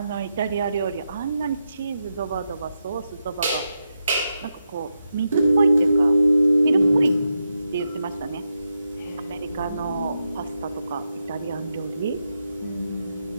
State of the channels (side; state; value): both; inverted; correlation -0.86